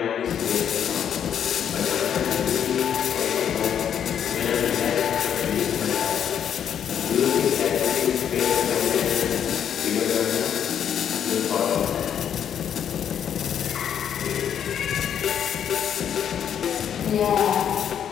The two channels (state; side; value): quieter; right; 8.9 dB